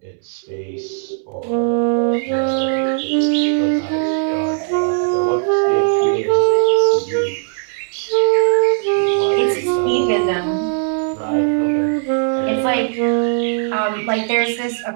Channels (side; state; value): left; silent; 67 dB below the other